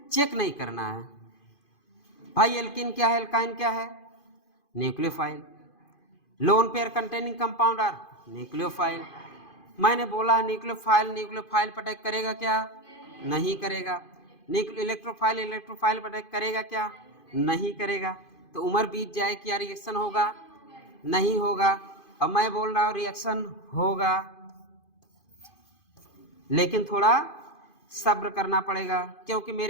चेक नहीं करना है। भाई एल्किन क्या है, एल्काइन क्या है, nucleophile. Lone pair containing compound are nucleophile. मैंने बोला न्यूक्लियोफाइल न्यूक्लियोफाइल पर अटैक करेगा क्या, नहीं करेगा। इलेक्ट्रोफाइल इलेक्ट्रोफाइल पर अटैक करेगा क्या, नहीं करेगा। तो उम्र बीत जाए, क्या रिएक्शन होगा, नहीं होगा। अब मैं बोल रहा हूँ रिएक्शन होगा, लेकिन थोड़ा सब्र करना पड़ेगा, क्योंकि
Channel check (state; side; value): late; right; 2.5 ms